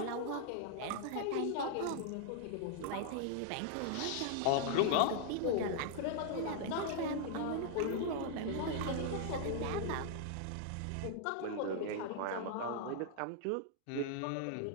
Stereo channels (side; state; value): both; different; correlation -0.01